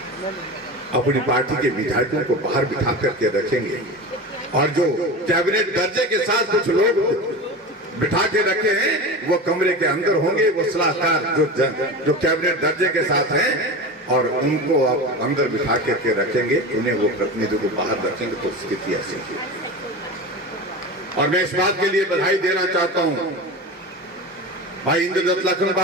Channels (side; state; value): both; normal; correlation 0.28